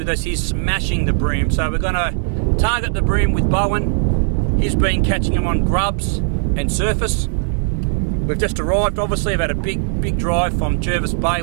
us. He's smashing the bream, so we're going to target the bream with Bowen. He's been catching them on grubs and surface. We've just arrived, obviously. I've had a big drive from Jervis Bay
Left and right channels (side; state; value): left; silent; digital silence